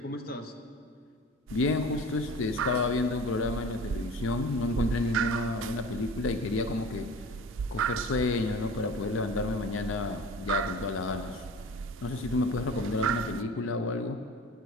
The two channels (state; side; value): normal; both; correlation 0.39